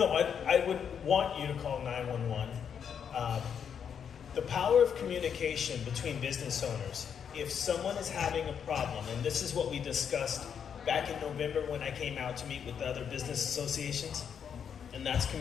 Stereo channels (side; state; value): right; quieter; 7.7 dB